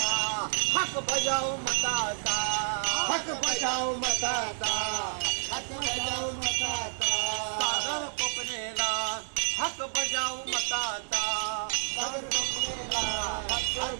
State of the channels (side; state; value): left; silent; digital silence